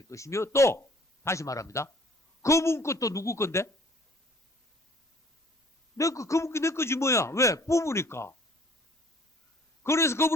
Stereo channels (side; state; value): both; normal; correlation 0.55